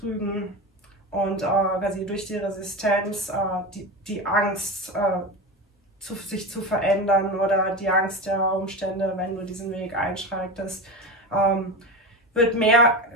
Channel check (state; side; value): normal; both; correlation 0.22